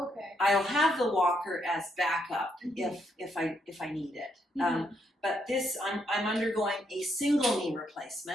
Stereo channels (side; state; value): both; normal; correlation 0.76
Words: okay. I'll have the walker as backup if I need it. But this, I'm undergoing a single knee